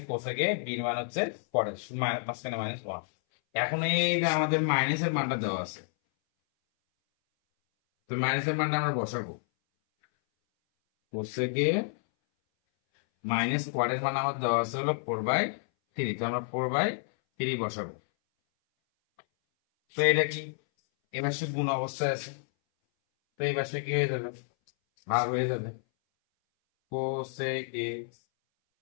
কোসেকে, বির মান হচ্ছে কটে, মাঝখানে মাইনাস 1। এখন এই যে আমাদের মাইনাসের মানটা দেওয়া আছে, তো মাইনাসের মানটা আমরা বসাবো। কোসেকে মাইনাস কোয়ারের মান আমার দেওয়া আছে হলো 4/3, তো আমরা 4/3 বসাবো। তো এটা কি এবার সে গুণ অবস্থায় আছে, তো এই পাশে কি হয়ে যাবে, ভাগ হয়ে যাবে। কোসেক এ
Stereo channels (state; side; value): silent; right; 58 dB below the other